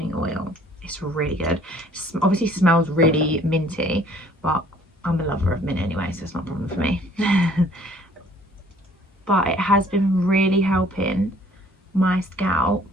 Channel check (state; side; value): normal; both; correlation 0.57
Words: Oil. It's really good. Obviously smells really minty, but I'm a lover of mint anyway, so it's not a problem for me. But it has been really helping my